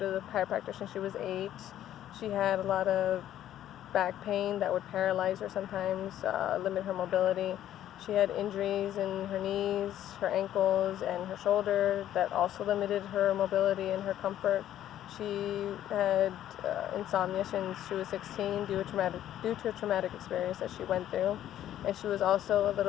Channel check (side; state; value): right; quieter; 11.8 dB